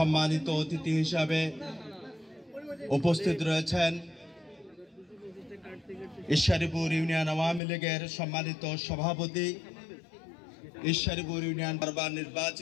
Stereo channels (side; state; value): right; drops out; at 7.6 s